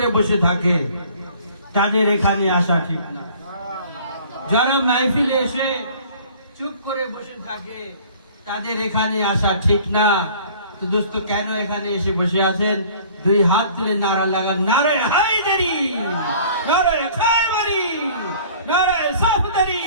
বসে থাকে তাদের এখানে আসা ঠিক না। যারা মাহফিলে এসে চুপ করে বসে থাকে তাদের এখানে আসা ঠিক না। তো দোস্ত, কেন এখানে এসে বসে আছেন? দুই হাত তুলে নারা লাগান, নারে হায়দারি, নারে খায়বারি, নারে সাফদারি।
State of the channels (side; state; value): both; inverted; correlation -0.50